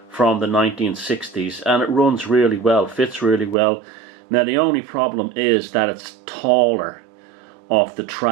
from the 1960s, and it runs really well, fits really well. Now the only problem is that it's taller off the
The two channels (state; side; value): drops out; left; at 3.6 s